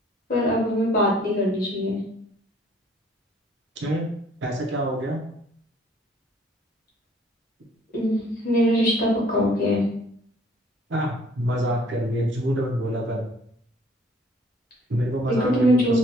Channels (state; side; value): normal; both; correlation 0.58